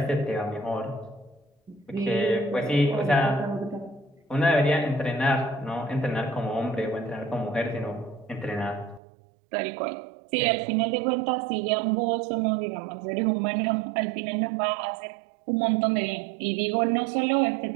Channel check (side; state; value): left; drops out; at 9.0 s